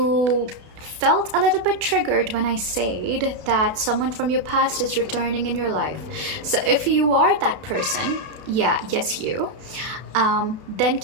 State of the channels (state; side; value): late; left; 32 ms